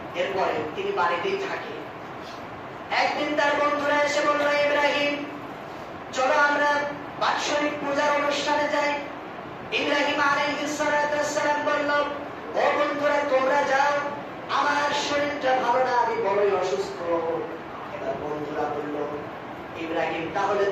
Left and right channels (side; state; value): both; identical; correlation 1.00